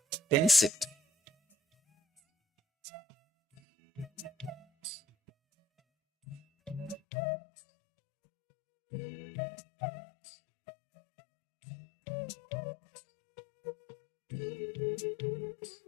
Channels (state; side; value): drops out; right; at 7.0 s